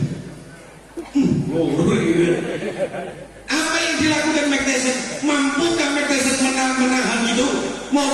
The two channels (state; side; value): identical; both; correlation 1.00